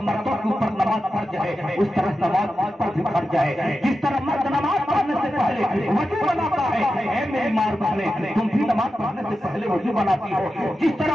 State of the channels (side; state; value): both; normal; correlation 0.91